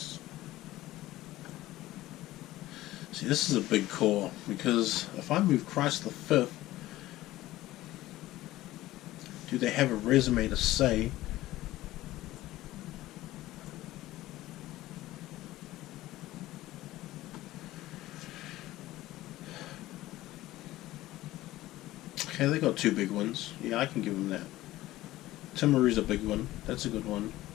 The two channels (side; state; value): right; quieter; 16.3 dB